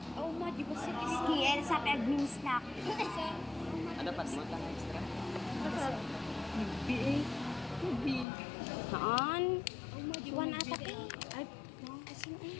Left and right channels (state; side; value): drops out; right; at 8.2 s